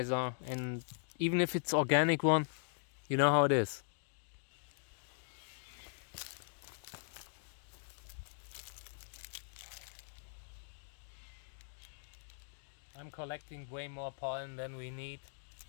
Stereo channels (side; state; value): right; silent; digital silence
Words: and even if it's organic one, you know how it is. I'm collecting way more pollen than we need,